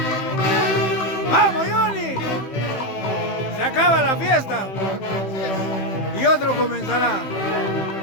¡Vamos, Johnny! Se acaba la fiesta y otro comenzará.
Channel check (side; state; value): right; late; 15 ms